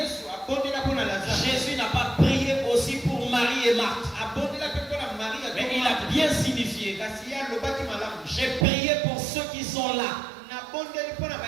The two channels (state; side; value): drops out; left; at 8.7 s